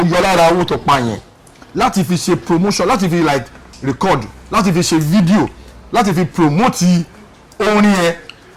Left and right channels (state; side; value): identical; both; correlation 1.00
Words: yọ lára owó tó pa yẹn láti fi ṣe promotion láti fi like record láti fi ṣe video láti fi promote orin yẹn